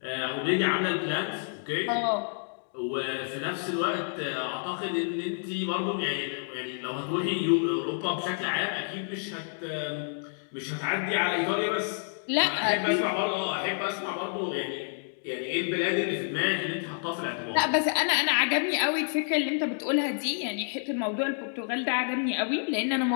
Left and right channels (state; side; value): silent; right; digital silence